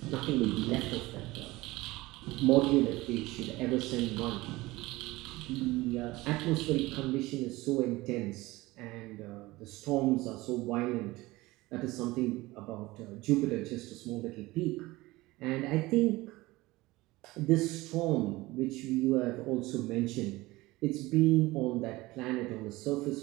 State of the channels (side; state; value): left; quieter; 20.0 dB